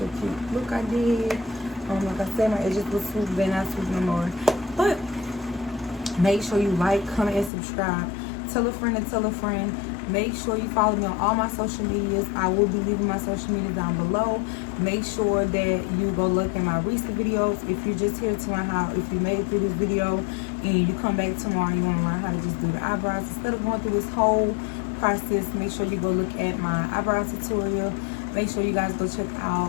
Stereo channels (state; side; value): drops out; right; at 7.5 s